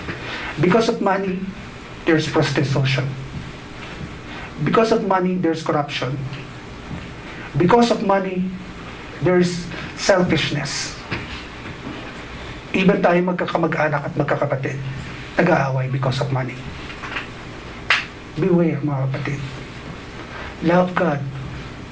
Because of money, there's prostitution. Because of money, there's corruption. Because of money, there's selfishness. Even tayo magkakamag-anak at magkakapatid, nag-aaway because of money. Beware, mga kapatid. Love God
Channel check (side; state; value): both; identical; correlation 1.00